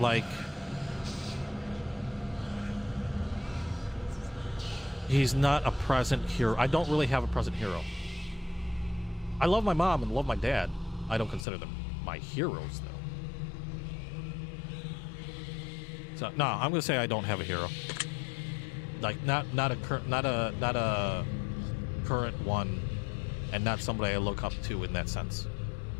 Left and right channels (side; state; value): right; drops out; at 11.5 s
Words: He's not a present hero. I don't really have a present hero. I love my mom and love my dad. I don't consider them my heroes, though. So no, I'm gonna say I don't have a hero. Like not a current one, and not somebody I look up to in that sense.